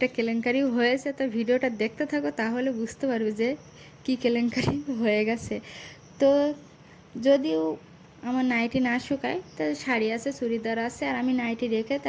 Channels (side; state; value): both; identical; correlation 1.00